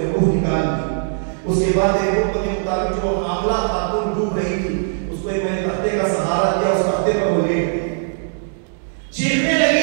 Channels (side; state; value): left; silent; digital silence